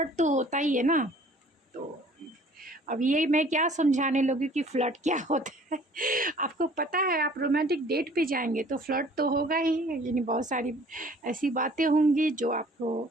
तो होता ही है ना। तो अब ये मैं क्या समझाने लगी कि फ़्लर्ट क्या होता है। आपको पता है आप रोमांटिक डेट पे जाएंगे तो फ्लर्ट तो होगा ही। यानी बहुत सारी ऐसी बातें होंगी जो आपको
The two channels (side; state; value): both; normal; correlation 0.53